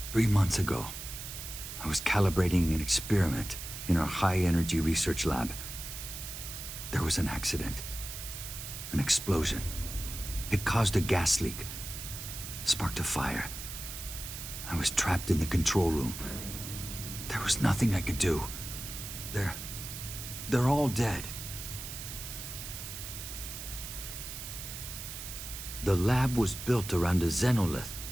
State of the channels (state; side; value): noise; right; hiss, 9 dB below the sound